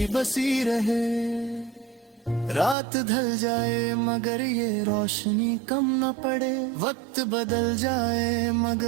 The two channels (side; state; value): left; drops out; at 2.8 s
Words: बसी रहे। रात ढल जाए मगर ये रोशनी कम न पड़े, वक्त बदल जाए